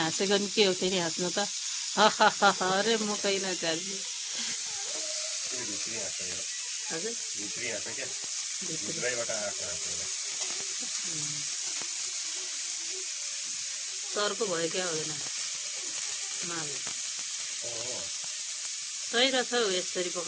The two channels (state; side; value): identical; both; correlation 1.00